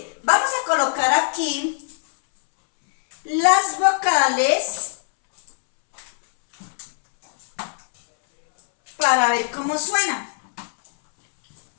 Vamos a colocar aquí las vocales para ver cómo suena.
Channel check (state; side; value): silent; right; 65 dB below the other